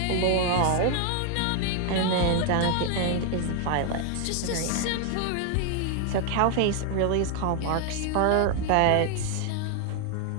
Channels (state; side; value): different; both; correlation 0.00